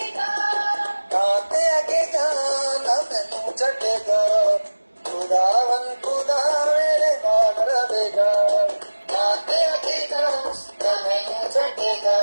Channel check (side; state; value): both; inverted; correlation -1.00